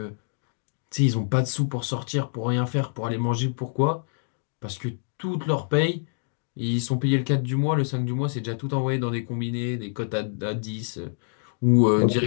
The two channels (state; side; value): silent; right; digital silence